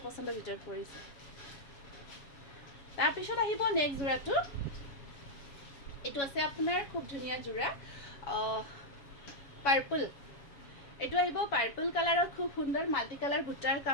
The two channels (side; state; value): right; late; 7.3 ms